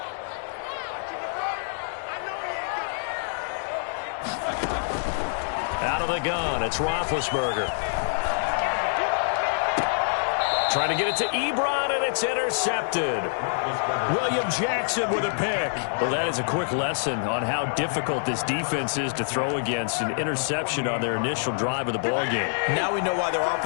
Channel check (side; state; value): right; silent; digital silence